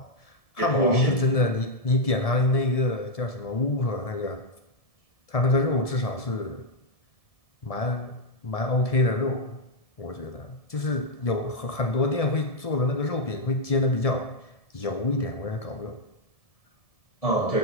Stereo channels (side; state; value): right; late; 1.7 ms